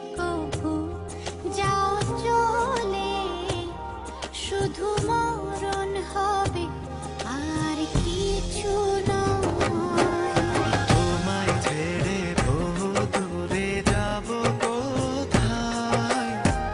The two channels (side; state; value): both; identical; correlation 1.00